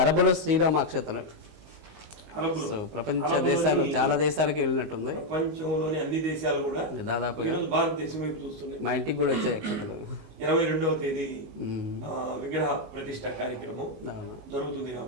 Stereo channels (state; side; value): late; left; 19 ms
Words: అరబులో శ్రీరామ అక్షతలు ప్రపంచ దేశాలు చాలా దేశాలకి వెళ్ళినట్టుంది. ప్రపంచంలోని అన్ని దేశాలు కూడా దాదాపుగా భారతదేశం వైపు చూస్తున్నాయి. మా ఇంటికి కూడా వచ్చాయి అక్షతలు. 22వ తేదీ విగ్రహ ప్రతిష్ట కార్యక్రమం జరుగుతుంది